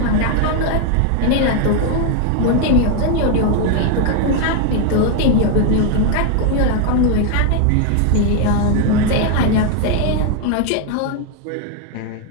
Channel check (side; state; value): both; different; correlation 0.01